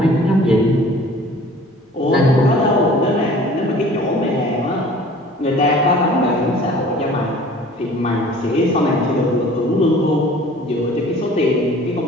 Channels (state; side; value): normal; both; correlation 0.48